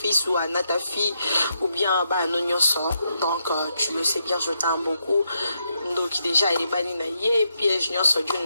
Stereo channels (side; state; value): both; inverted; correlation -0.80